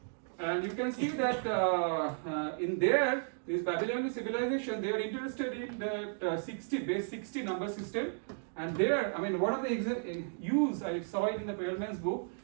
And you can see that in this Babylonian civilization, they are interested in the base 60 number system. And there, I mean, one of the use, I saw it in the Perelman's book,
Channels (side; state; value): left; silent; digital silence